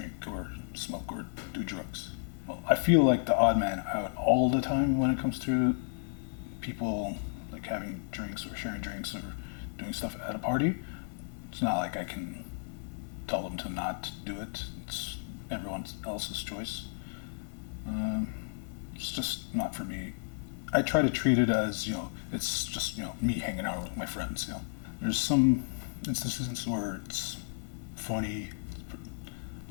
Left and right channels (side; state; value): right; silent; digital silence